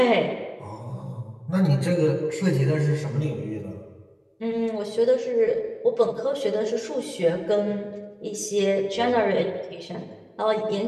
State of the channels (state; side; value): identical; both; correlation 1.00